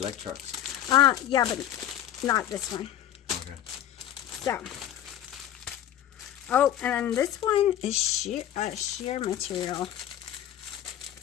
trucks. Yeah, but not this one. Okay. So. Oh, and then this one is sheer material.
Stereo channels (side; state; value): right; quieter; 11.3 dB